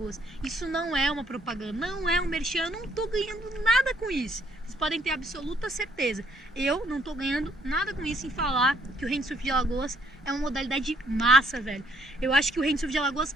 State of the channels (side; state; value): both; normal; correlation 0.67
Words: Isso não é uma propaganda, não é um merchan, eu não tô ganhando nada com isso. Vocês podem ter absoluta certeza. Eu não tô ganhando nada com isso em falar que o Windsurf de Alagoas é uma modalidade massa, velho. Eu acho que o Windsurf de Alagoas